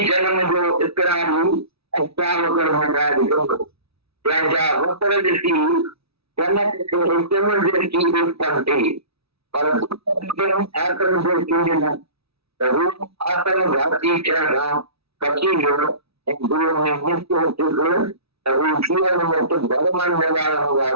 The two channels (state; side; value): late; left; 0.77 ms